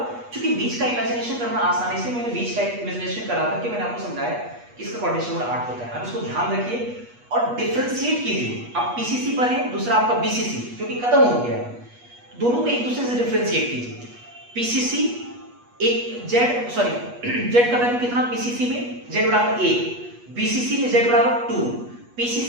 क्योंकि बीच का इमेजिनेशन करना आसान है, इसलिए मैंने बीच का इमेजिनेशन करा करके मैंने आपको समझाया कि इसका कोऑर्डिनेशन नंबर 8 होता है। अब इसको ध्यान रखिए और डिफरेंशिएट कीजिए। आप पीसीसी पर है, दूसरा आपका बीसीसी, क्योंकि खत्म हो गया है, दोनों को एक दूसरे से डिफरेंशिएट कीजिए। पीसीसी एक जेड, सॉरी जेड का वैल्यू कितना पीसीसी में? जेड बराबर 1, बीसीसी में जेड बराबर 2,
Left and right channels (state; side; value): late; left; 8.3 ms